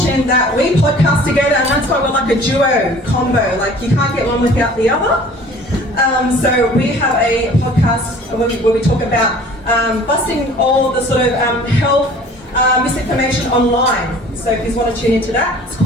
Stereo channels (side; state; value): both; normal; correlation 0.48